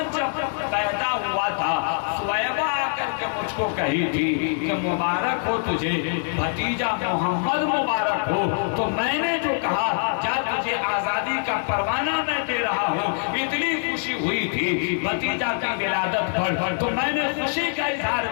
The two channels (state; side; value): silent; right; 63 dB below the other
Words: جب پیدا ہوا تھا، سویبہ آ کر کے مجھ کو کہی تھی کہ مبارک ہو تجھے بھتیجا محمد مبارک ہو، تو میں نے جو کہا کیا تجھے آزادی کا پروانہ میں دے رہا ہوں، اتنی خوشی ہوئی تھی بھتیجا کی ولادت پر، تو میں نے خوشی کا اظہار